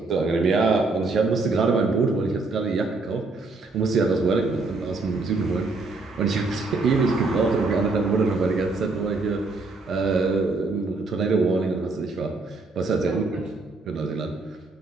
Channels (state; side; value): quieter; left; 3.6 dB